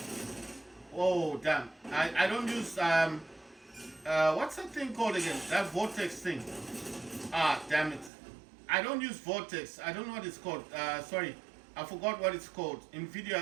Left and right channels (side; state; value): left; drops out; at 8.1 s